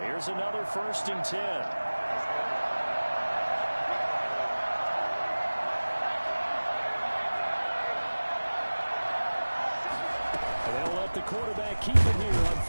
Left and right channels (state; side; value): inverted; both; correlation -1.00